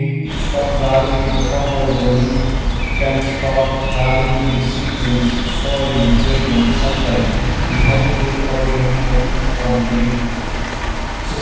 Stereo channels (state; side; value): identical; both; correlation 1.00